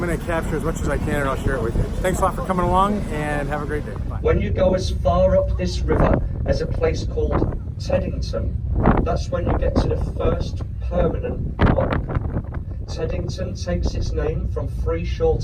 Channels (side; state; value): both; identical; correlation 1.00